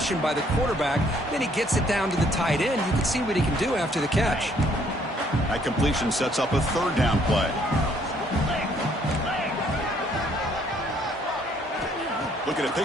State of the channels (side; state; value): both; normal; correlation 0.65